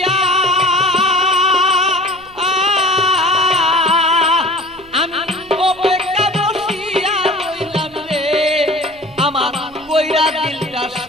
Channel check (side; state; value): right; noise; hum, 26 dB below the sound